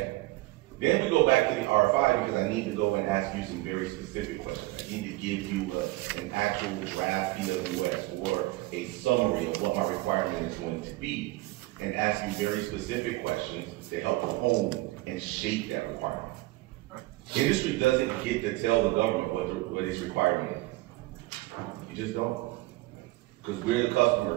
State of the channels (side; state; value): left; quieter; 20.0 dB